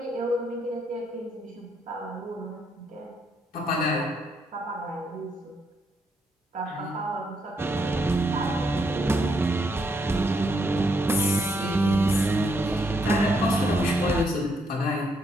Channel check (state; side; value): normal; both; correlation 0.75